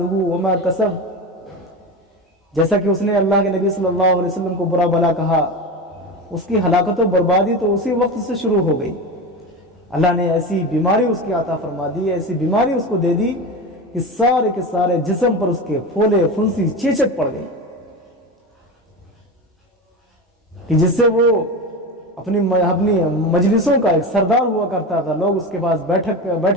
وما کسب، جیسا کہ اس نے اللہ کے نبی صلی اللہ علیہ وسلم کو برا بھلا کہا، اس کی ہلاکت و بربادی تو اسی وقت سے شروع ہو گئی۔ اللہ نے ایسی بیماری اس کی عطا فرما دی، ایسی بیماری اس کو دے دی کہ سارے کے سارے جسم پر اس کے پھولے پھنسی چیچک پڑ گئی، کہ جس سے وہ اپنی مجلسوں کا ایک سردار ہوا کرتا تھا، لوگ اس کے پاس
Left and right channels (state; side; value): normal; both; correlation 0.23